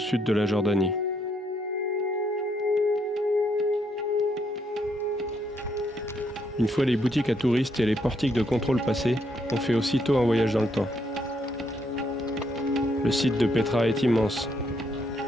de la Jordanie. Une fois les boutiques à touristes et les portiques de contrôle passés, on fait aussitôt un voyage dans le temps. Le site de Petra est immense.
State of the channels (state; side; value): normal; both; correlation 0.74